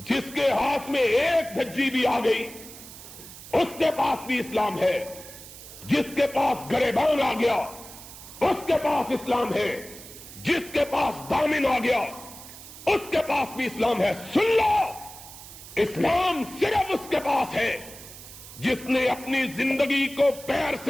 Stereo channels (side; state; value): right; noise; hiss, 16 dB below the sound